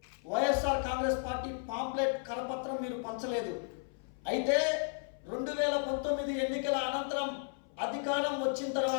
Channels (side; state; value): right; silent; 55 dB below the other